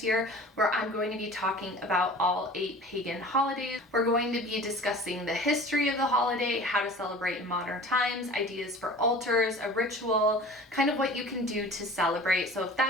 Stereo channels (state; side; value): normal; both; correlation 0.42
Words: year where I'm going to be talking about all 8 pagan holidays. We're going to be discussing the history of the holiday, how to celebrate in modern times, ideas for altars, a ritual, kind of what you can do to celebrate. So if